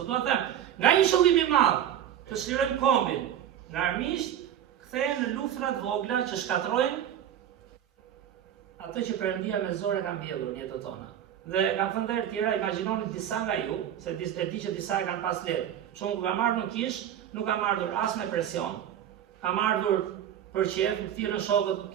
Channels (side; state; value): left; quieter; 10.3 dB